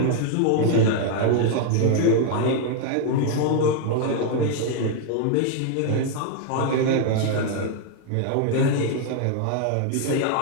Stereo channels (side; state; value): both; different; correlation 0.00